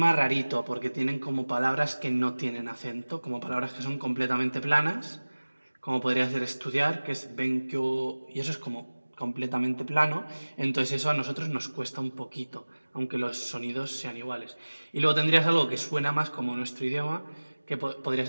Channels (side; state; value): both; inverted; correlation -1.00